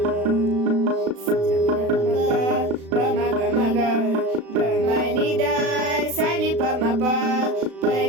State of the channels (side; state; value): left; late; 36 ms